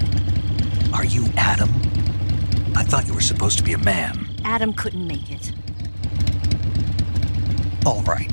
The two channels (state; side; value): inverted; both; correlation -1.00